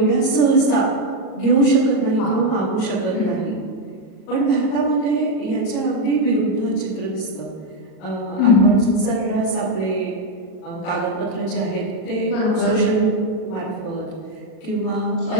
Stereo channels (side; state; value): right; late; 38 ms